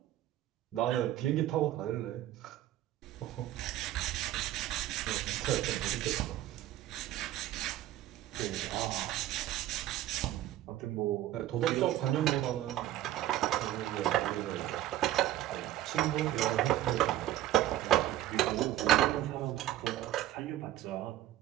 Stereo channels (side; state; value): left; quieter; 13.6 dB